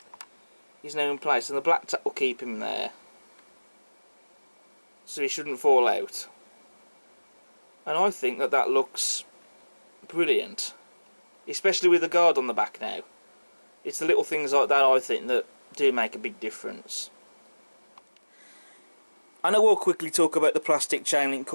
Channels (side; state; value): both; inverted; correlation -1.00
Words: is now in place, and the black tack will keep him there, so he shouldn't fall out. And I think that that looks brilliant, especially with the guard on the back now. It's the little things like that I think that do make a big difference. And I will quickly talk about the plastic chain link